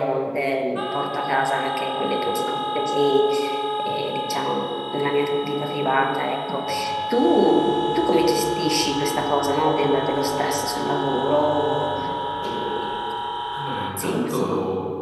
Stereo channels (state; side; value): identical; both; correlation 1.00